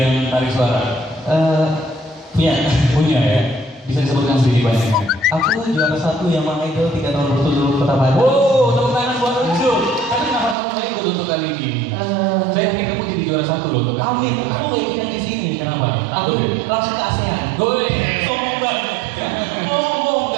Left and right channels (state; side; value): drops out; left; at 10.6 s